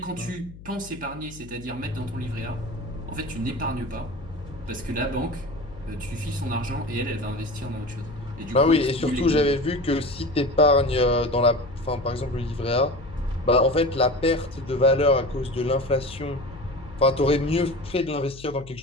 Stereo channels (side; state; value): left; noise; hum, 17 dB below the sound